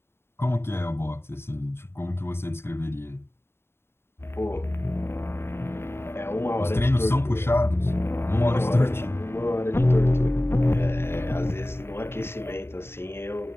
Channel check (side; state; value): right; late; 0.12 ms